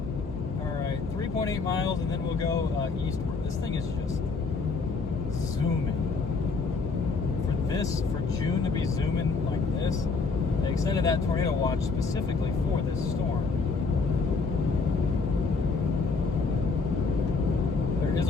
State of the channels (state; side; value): quieter; right; 4.3 dB